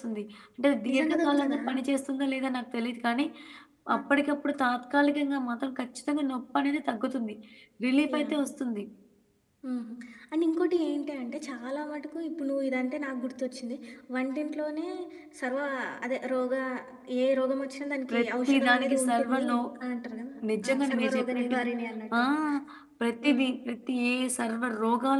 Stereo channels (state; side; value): identical; both; correlation 1.00